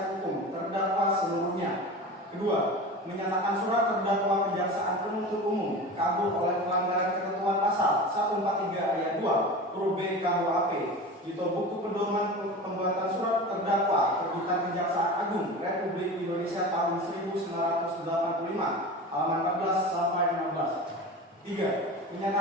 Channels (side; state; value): both; normal; correlation 0.31